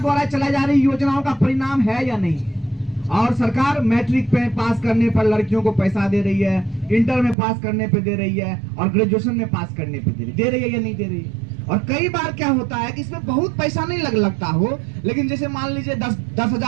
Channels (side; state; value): left; drops out; at 7.4 s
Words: द्वारा चलाई जा रही योजनाओं का परिणाम है या नहीं? और सरकार मैट्रिक पे पास करने पर लड़कियों को पैसा दे रही है, इंटर में पास करने पे दे रही है, और ग्रेजुएशन में पास करने पे दे रही है या नहीं दे रही है? और कई बार क्या होता है कि इसमें बहुत पैसा नहीं लगता हो, लेकिन जैसे मान लीजिए